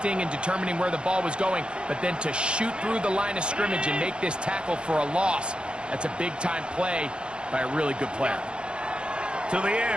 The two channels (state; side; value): late; left; 0.055 ms